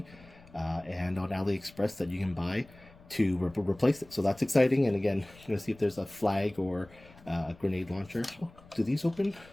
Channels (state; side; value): noise; left; rumble, 24 dB below the sound